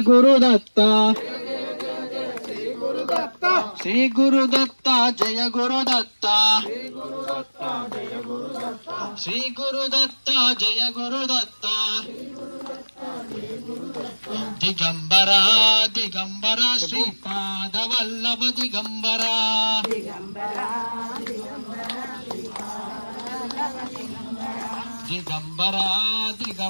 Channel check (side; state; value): both; inverted; correlation -1.00